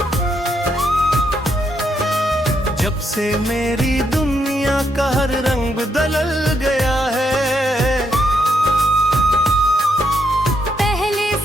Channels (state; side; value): normal; both; correlation 0.78